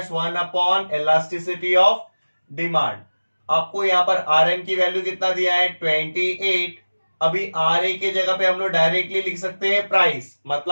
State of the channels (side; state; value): both; inverted; correlation -1.00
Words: 1 upon elasticity of demand. आपको यहां पर आर एम की वैल्यू कितना दिया है? 28। अभी आर ए के जगह पे हम लोग डायरेक्टली लिख सकते हैं प्राइस,